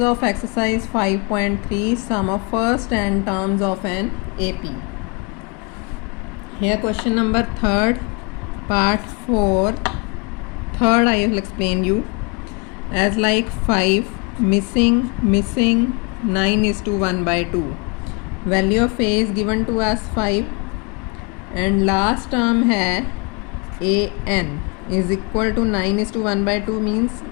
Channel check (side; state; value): right; quieter; 32.0 dB